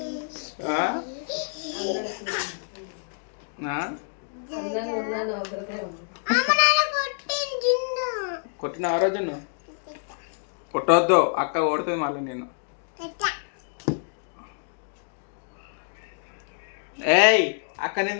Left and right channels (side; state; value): right; silent; 60 dB below the other